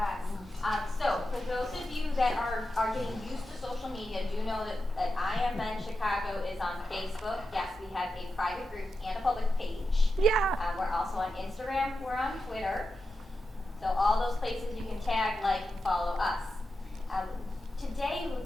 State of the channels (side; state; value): both; normal; correlation 0.89